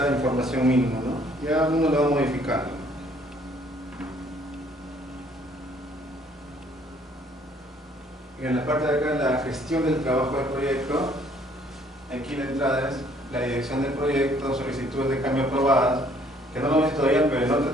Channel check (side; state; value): both; normal; correlation 0.61